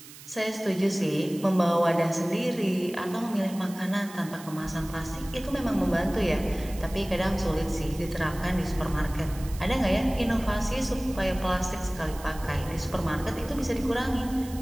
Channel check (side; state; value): right; noise; hiss, 17 dB below the sound